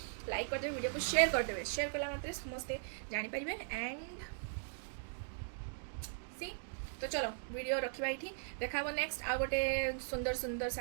लाइक करदे वीडियो को शेयर करदे शेयर कला मात्रे समस्ते जानीपारे एंड सी तो चलो वीडियो रखा ये देखा नेक्स्ट आ गोटे सुंदर सुंदर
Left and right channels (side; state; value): left; silent; digital silence